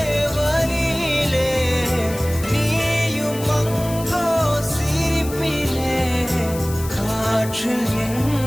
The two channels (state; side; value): noise; left; hiss, 13 dB below the sound